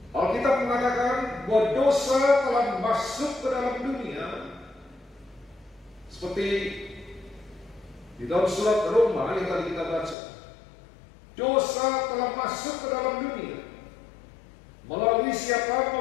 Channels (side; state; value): right; drops out; at 10.2 s